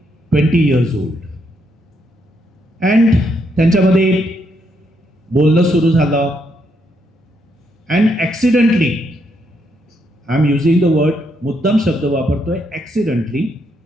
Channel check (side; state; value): both; normal; correlation 0.76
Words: 20 years old. And त्यांच्यामध्ये बोलणं सुरू झालं. And accidentally, I am using the word, मुद्दाम शब्द वापरतोय, accidentally